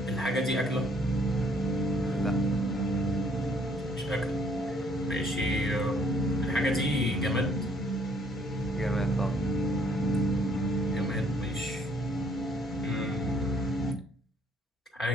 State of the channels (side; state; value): both; normal; correlation 0.64